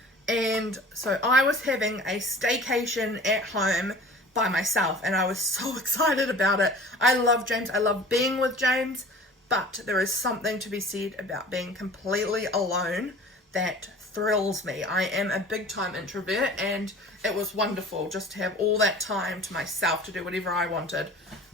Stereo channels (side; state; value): both; normal; correlation 0.43